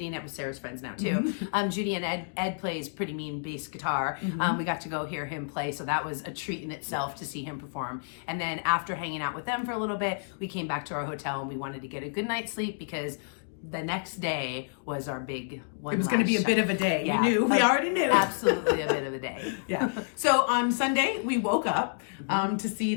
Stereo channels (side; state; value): right; silent; digital silence